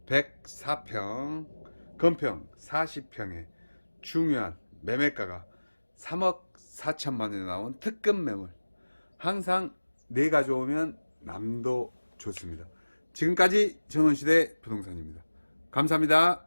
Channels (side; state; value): both; inverted; correlation -1.00